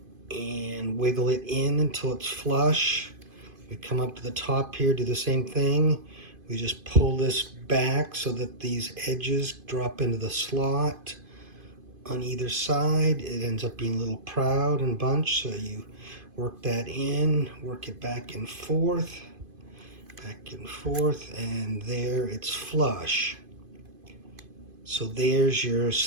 and wiggle it in until it's flush. We come up to the top here, do the same thing. We just pull this back so that these edges drop into the slot on either side. It ends up being a little proud and bunched, so you work that in, work it back and forth, and there it's flush. So there's your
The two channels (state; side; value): late; left; 2.5 ms